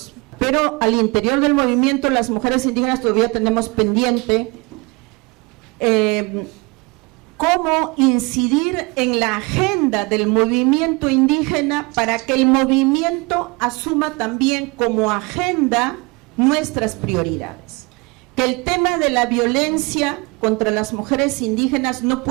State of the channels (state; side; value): quieter; left; 26.7 dB